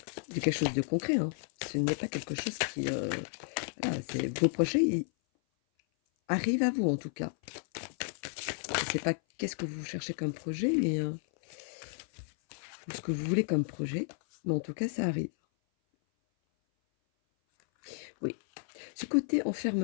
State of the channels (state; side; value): silent; right; 56 dB below the other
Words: C'est quelque chose de concret. Hein. Ce n'est pas quelque chose qui... voilà, vos projets ils arrivent à vous, en tout cas. Je ne sais pas qu'est-ce que vous cherchez comme projet, mais... ou ce que vous voulez comme projet. Mais en tout cas, ça arrive. Oui. Ce côté